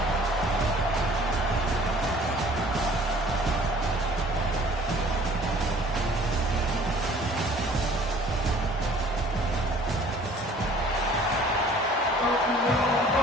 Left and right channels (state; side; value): normal; both; correlation 0.52